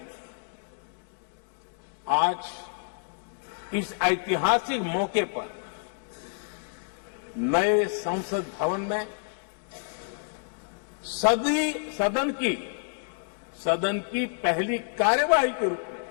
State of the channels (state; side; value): silent; right; digital silence